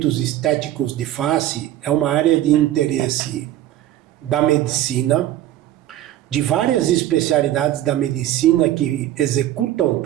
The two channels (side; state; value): left; quieter; 13.3 dB